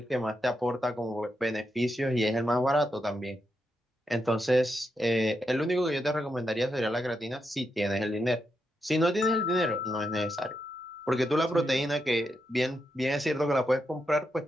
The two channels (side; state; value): both; normal; correlation 0.84